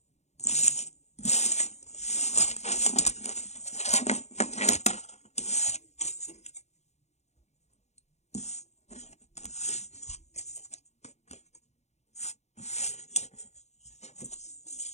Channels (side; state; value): right; late; 0.32 ms